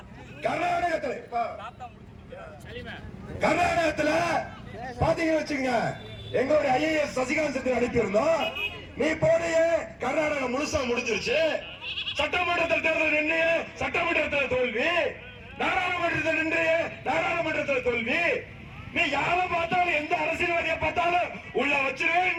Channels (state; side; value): identical; both; correlation 1.00